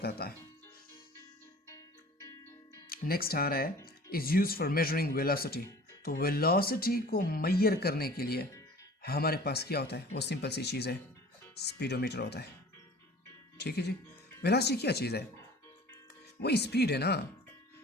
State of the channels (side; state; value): both; normal; correlation 0.45